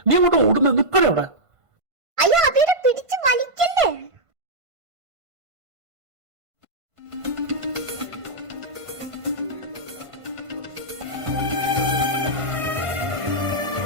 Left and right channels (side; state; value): left; late; 1.5 ms